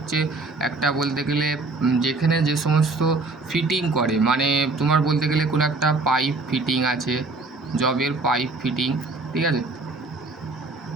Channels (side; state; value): left; quieter; 3.5 dB